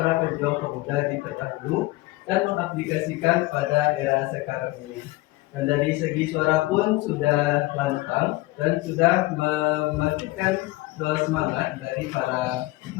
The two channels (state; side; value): quieter; right; 20.0 dB